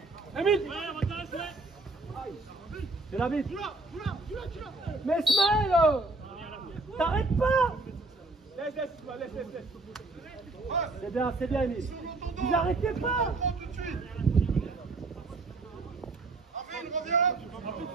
Émile. C'est la bite. Mais Smaël, t'arrêtes pas. Laisse. C'est bien, Émile. Vous arrêtez pas.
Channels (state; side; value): quieter; left; 3.2 dB